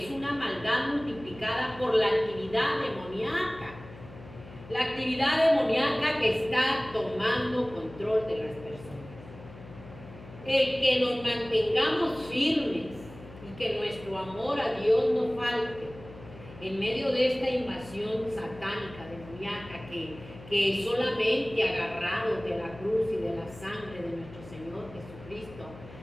es una maldad multiplicada por la actividad demoníaca, la actividad demoníaca que está tomando control de las personas. El que nos mantengamos firmes y que nuestro amor a Dios no falte en medio de esta invasión satánica, demoníaca, que solamente agarrados de la cruz y de la sangre de nuestro Señor Jesucristo,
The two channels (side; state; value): left; noise; hum, 17 dB below the sound